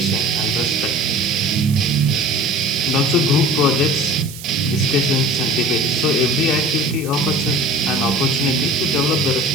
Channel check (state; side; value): noise; right; hiss, 14 dB below the sound